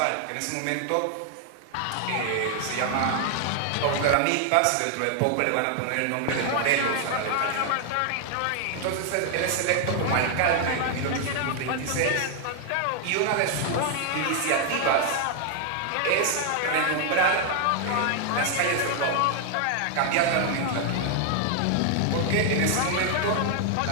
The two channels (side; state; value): both; different; correlation 0.00